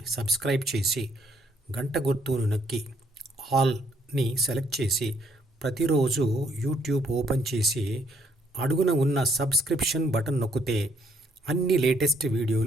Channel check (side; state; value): both; normal; correlation 0.68